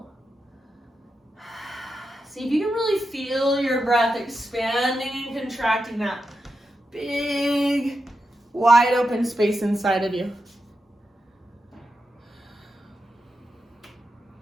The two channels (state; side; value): normal; both; correlation 0.88